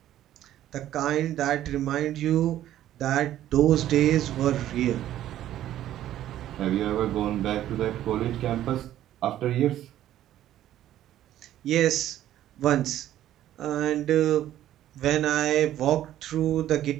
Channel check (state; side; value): quieter; left; 12.6 dB